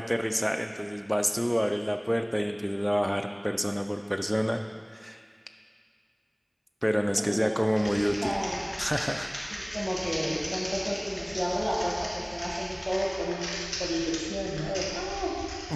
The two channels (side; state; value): both; identical; correlation 1.00